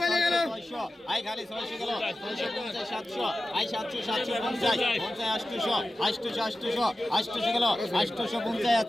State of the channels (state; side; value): normal; both; correlation 0.94